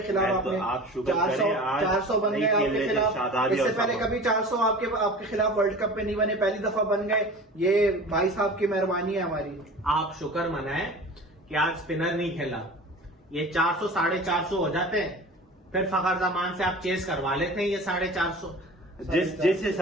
खिलाफ। तो आपने आप शुगर करें, आज 400 बन गए नहीं आपके खेले खिलाफ। शादाब इससे और पहले साहब। कभी 400 आपके खिलाफ वर्ल्ड कप में नहीं बने, पहली दफा बन गए। ये भाई साहब की मेहरबानी है हमारी। आप शुक्र मनाएं कि आज स्पिनर नहीं खेला, ये 400 450 हो जाते हैं, फिर फखर जमान से आप चेस करवा लेते हैं ये 450। जिस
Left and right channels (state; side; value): normal; both; correlation 0.38